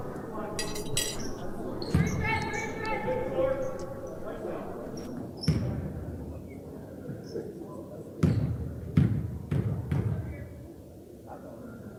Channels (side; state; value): both; identical; correlation 1.00